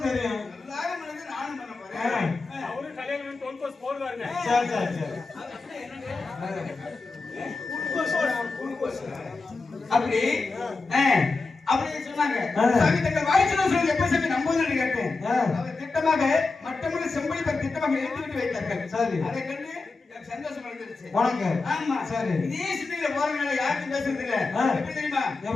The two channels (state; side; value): quieter; right; 3.8 dB